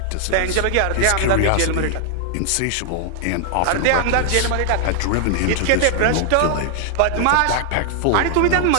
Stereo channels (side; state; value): both; different; correlation 0.00